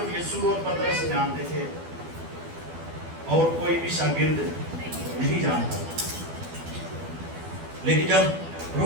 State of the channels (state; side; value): late; left; 12 ms